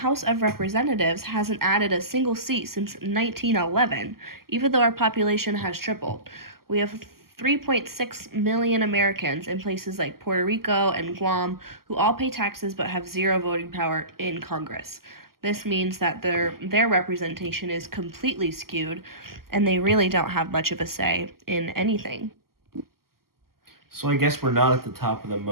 of Representatives hasn't added a single seat since 1911, even though our population has tripled. We have 3.6 million Americans in places like Puerto Rico and Guam who all pay taxes but have zero voting power in Congress. This means that their representation is completely skewed and they really don't have much of a say in anything. So I guess we're not at the top of the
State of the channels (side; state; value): left; late; 0.92 ms